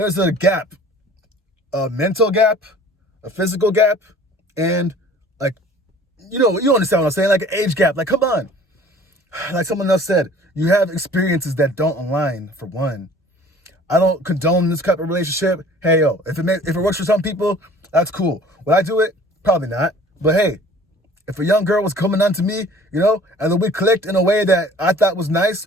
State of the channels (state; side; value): normal; both; correlation 0.49